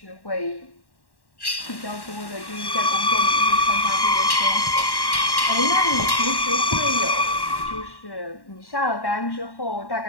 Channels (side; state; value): right; late; 1.1 ms